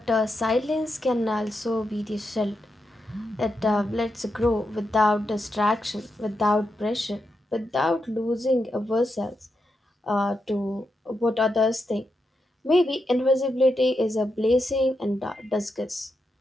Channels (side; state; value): both; normal; correlation 0.85